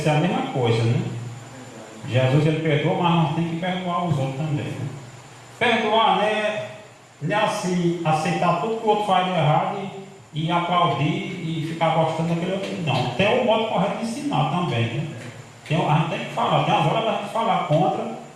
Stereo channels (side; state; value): both; identical; correlation 1.00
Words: a mesma coisa, né? Jesus ele perdoa, mas nós temos que perdoar os outros também, né? Perdoar, né? Não é assim, aceitar tudo que o outro faz de errado e aplaudir e ficar gostando daquele outro. Não, tem o modo correto de ensinar também, né? A gente tem que falar, tem as horas da gente falar contra